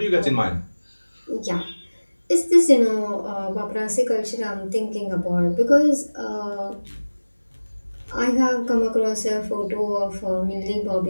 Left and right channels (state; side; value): inverted; both; correlation -1.00